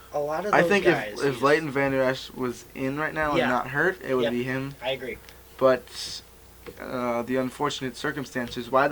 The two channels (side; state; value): both; identical; correlation 1.00